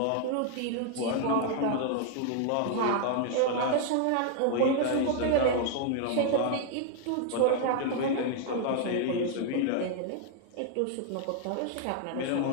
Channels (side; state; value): both; different; correlation 0.00